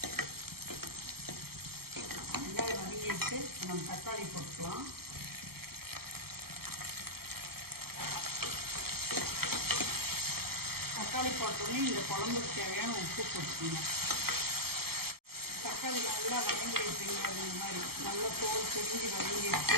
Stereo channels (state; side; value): late; left; 0.95 ms